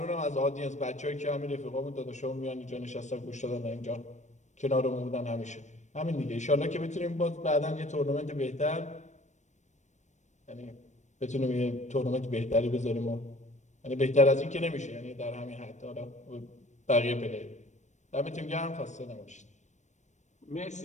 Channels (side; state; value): right; late; 0.34 ms